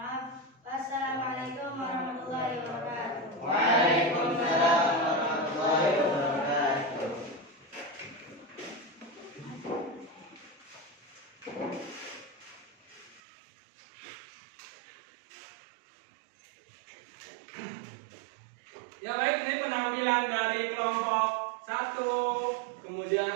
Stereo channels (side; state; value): left; drops out; at 13.2 s